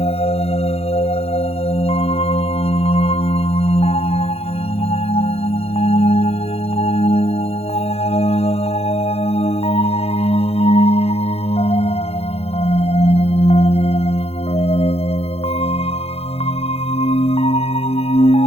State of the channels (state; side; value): late; right; 0.29 ms